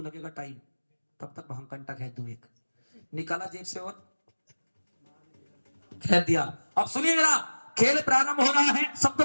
लगेगा टाइम, तब तक भांग कंटा खेल दूं, एक निकाला जेब से और खेल दिया। अब सुनिए जरा, खेल प्रारंभ हो रहा है,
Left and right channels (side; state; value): both; inverted; correlation -1.00